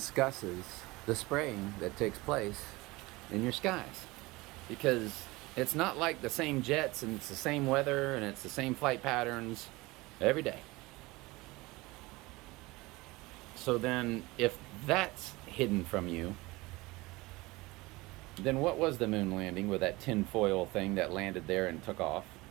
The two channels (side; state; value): left; quieter; 21.8 dB